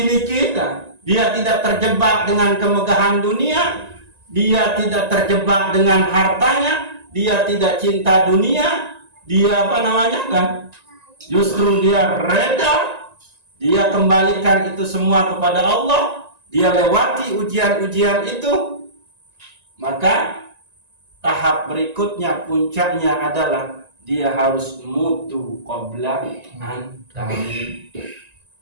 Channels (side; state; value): left; late; 1.9 ms